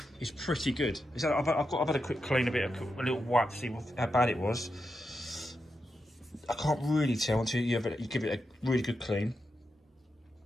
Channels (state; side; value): normal; both; correlation 0.87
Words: is pretty good. I've had a quick clean, a little wipe to see how bad it was. I can't really tell until you give it a really good clean.